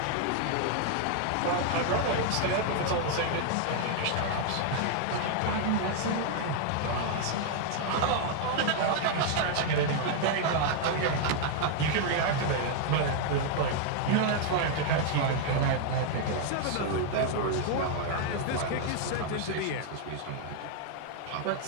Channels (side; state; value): both; different; correlation 0.00